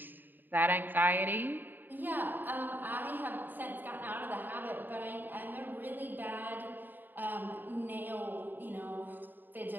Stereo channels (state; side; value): late; left; 0.091 ms